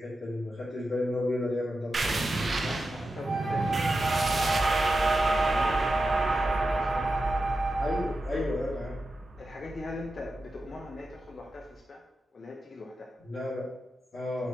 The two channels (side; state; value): both; normal; correlation 0.90